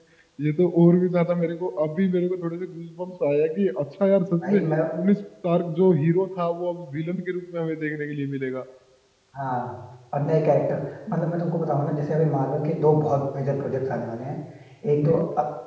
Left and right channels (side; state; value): both; identical; correlation 1.00